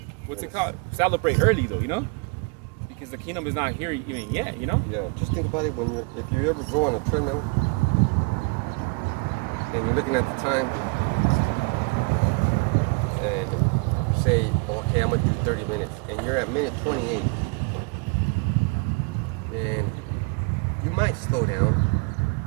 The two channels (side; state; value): left; quieter; 31.7 dB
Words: what's it called? Celebrate early though, because the kingdom is not here even yet, Yeah, just think about it if you ever go on a treadmill and you're looking at the time and you say, okay, I'm gonna do 30 minutes, and you're at minute 28, and you might slow down.